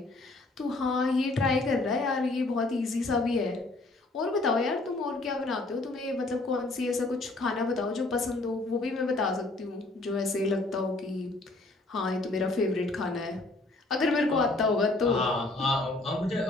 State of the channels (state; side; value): quieter; right; 3.0 dB